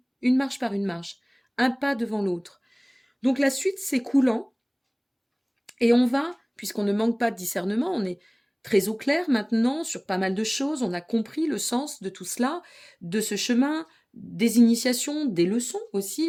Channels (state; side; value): identical; both; correlation 1.00